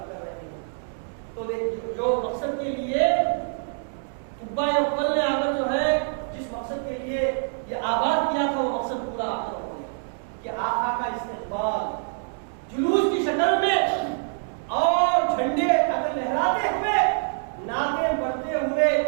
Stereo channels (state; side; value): silent; left; 61 dB below the other